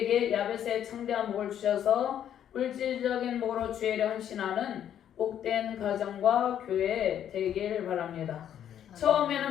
야벳의 창대한 복을 주셔서 물질적인 복으로 주의 일에 헌신하는 복된 가정과 교회 되길 바랍니다.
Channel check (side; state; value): right; quieter; 10.0 dB